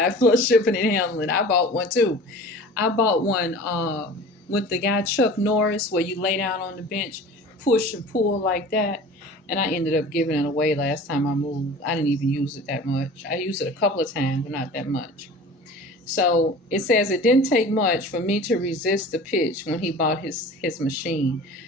plus shipping and handling. I bought one too. I bought one with the guy Chuck Norris, where you lay down on the bench, push and pull like that. And I ended up giving it away last time I moved. I didn't even use it that much. I used it a couple of times, but not that much. So it says it didn't take much for me to resist the pitch when he bought his machine.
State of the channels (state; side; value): normal; both; correlation 0.40